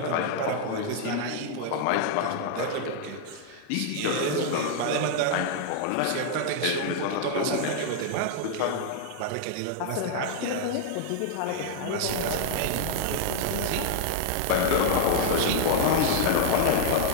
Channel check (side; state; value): both; different; correlation -0.01